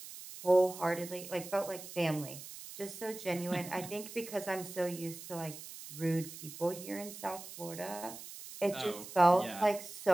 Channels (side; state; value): right; noise; hiss, 13 dB below the sound